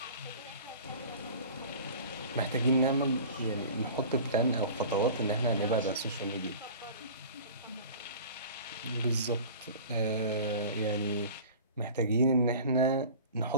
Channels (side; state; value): both; inverted; correlation -0.41